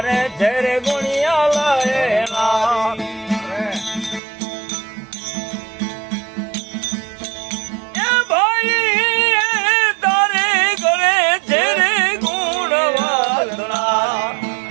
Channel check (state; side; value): drops out; left; at 4.2 s